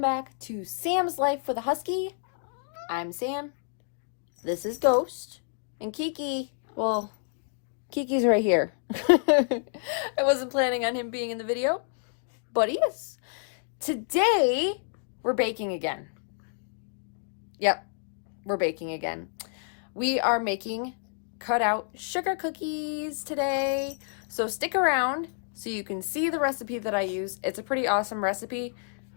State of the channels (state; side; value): silent; right; 59 dB below the other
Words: back to Sam's Life for the Husky. I'm Sam, this is Ghost, and Kiki, well, Kiki's right here. I wasn't planning on him being in the video, but he is. Today, we're baking again. Yep, we're baking again. We are making cutout sugar cookies today, so stick around so you can see the recipe that I use. It's a pretty awesome recipe.